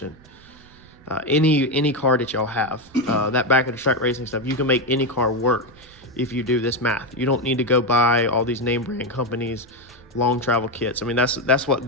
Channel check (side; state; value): right; noise; rumble, 24 dB below the sound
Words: Any car that y'all have, that back of the track racing stuff, you can make any car work if you do this math. You don't need to go buy all these name brand companies, long travel kits. I mean, that's what